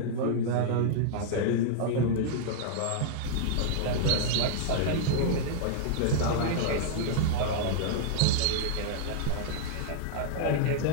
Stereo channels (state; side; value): different; both; correlation -0.01